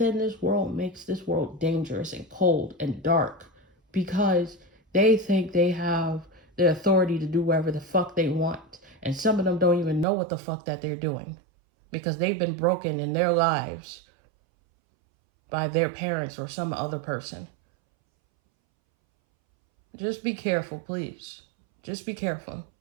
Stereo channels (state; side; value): drops out; left; at 10.1 s